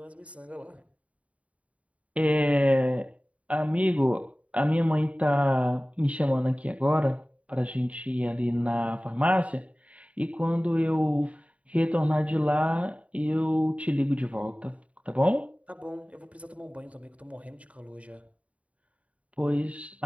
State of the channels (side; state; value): left; late; 0.066 ms